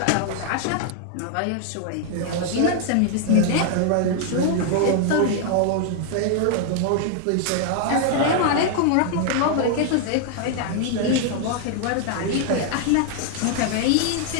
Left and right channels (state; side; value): different; both; correlation 0.00